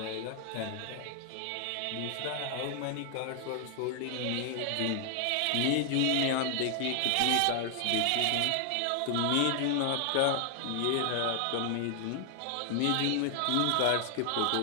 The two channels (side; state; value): both; different; correlation 0.00